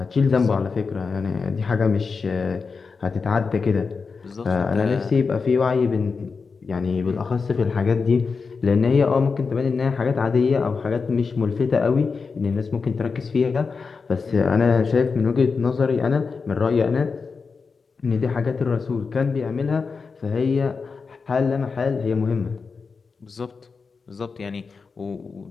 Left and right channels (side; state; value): right; quieter; 4.9 dB